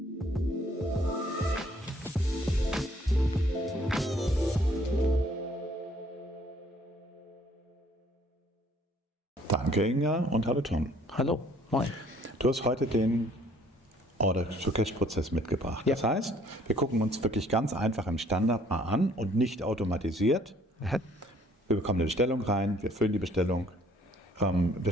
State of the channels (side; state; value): both; normal; correlation 0.60